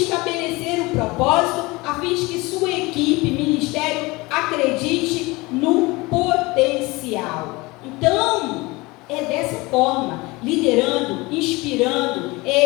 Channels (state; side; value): quieter; right; 23.1 dB